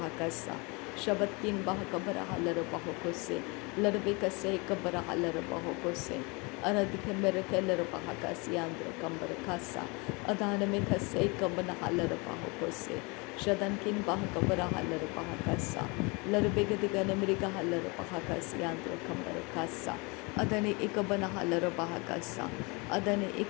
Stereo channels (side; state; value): right; quieter; 28.6 dB